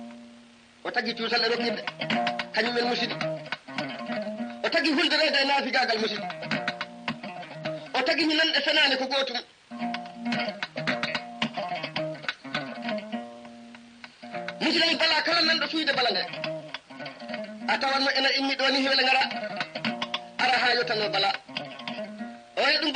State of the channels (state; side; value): identical; both; correlation 1.00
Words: o tagi cuusal e rokkirde kañumen musidi o tagi hulderede e naafigagal musidi o tagi mi nanɗe fenane ko gotum musidɗo bala kala nanɗo suyde bala nde a tawanno ena immi ɗo ni hewle ngara ara ha yottano bala o e ɗum